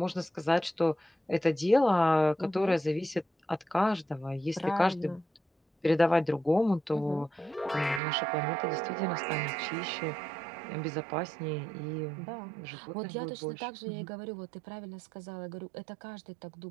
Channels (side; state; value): left; drops out; at 8.0 s